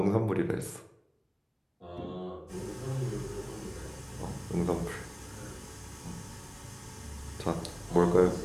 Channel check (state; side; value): identical; both; correlation 1.00